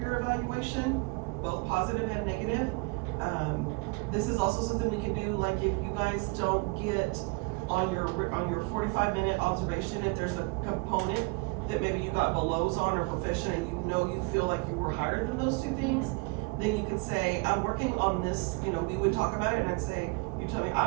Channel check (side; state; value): left; quieter; 29.4 dB